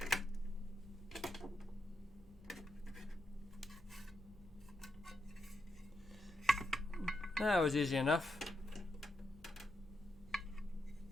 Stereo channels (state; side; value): normal; both; correlation 0.83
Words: That was easy enough.